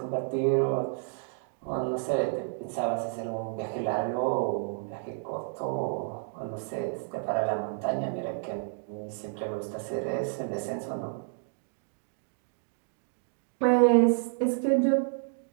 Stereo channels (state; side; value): silent; left; digital silence